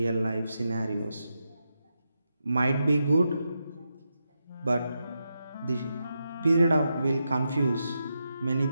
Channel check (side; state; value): both; inverted; correlation -0.86